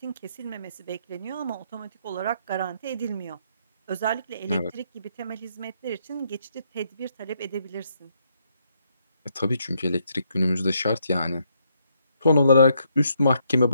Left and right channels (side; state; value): both; inverted; correlation -0.74